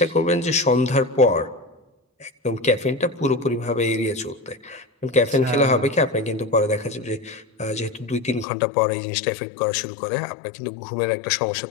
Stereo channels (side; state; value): right; drops out; at 8.5 s